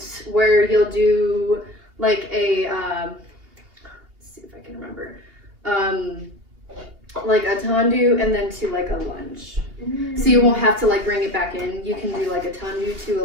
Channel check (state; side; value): late; left; 2.9 ms